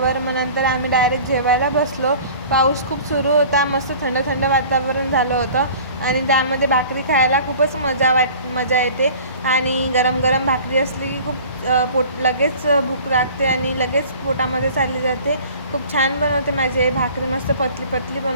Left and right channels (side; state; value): both; inverted; correlation -0.45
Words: मग नंतर आम्ही डायरेक्ट जेवायला बसलो. पाऊस खूप सुरू होता, मस्त थंड थंड वातावरण झालं होतं आणि त्यामध्ये भाकरी खायला खूपच मजा येते. आणि गरम गरम भाकरी असली की खूप लगेच भूक लागते आणि लगेच पोटामध्ये चालली जाते. खूप छान बनवते माझी भाकरी, मस्त पतली पतली